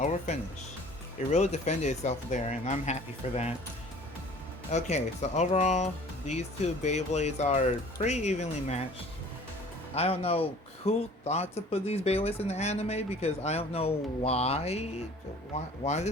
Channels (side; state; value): both; normal; correlation 0.49